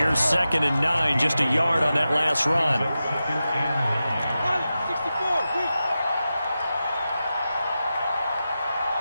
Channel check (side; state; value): both; inverted; correlation -0.92